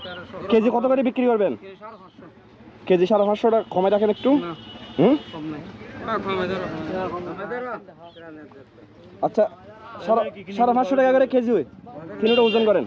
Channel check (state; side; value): identical; both; correlation 1.00